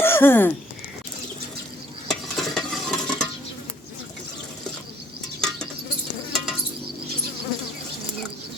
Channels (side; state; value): both; normal; correlation 0.63